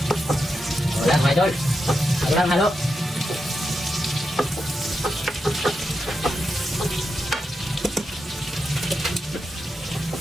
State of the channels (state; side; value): normal; both; correlation 0.87